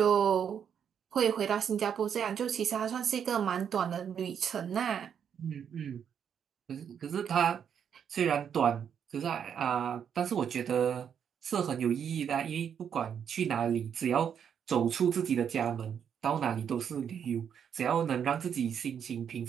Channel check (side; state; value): left; quieter; 8.0 dB